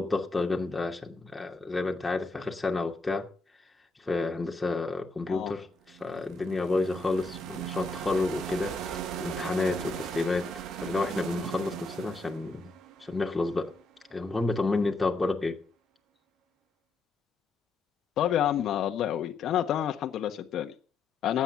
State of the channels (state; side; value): quieter; right; 3.4 dB